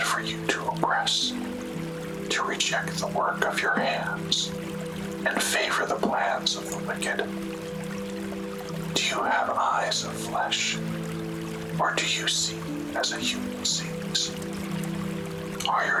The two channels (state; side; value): identical; both; correlation 1.00